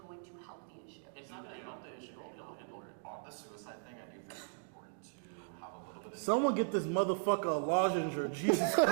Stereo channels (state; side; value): silent; left; digital silence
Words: to help the issue. It's not going to help the issue. It'll handle it. On the suicide thing, I do think it's important to have a little bit of Someone get this motherfucker a lozenger. Jesus